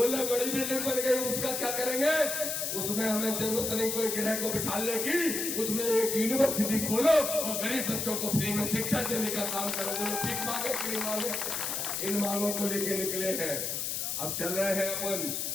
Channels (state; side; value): noise; left; hiss, 2 dB below the sound